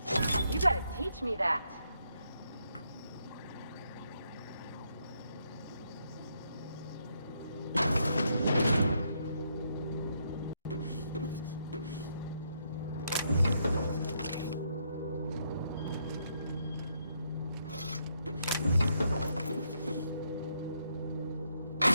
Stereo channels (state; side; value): inverted; both; correlation -0.76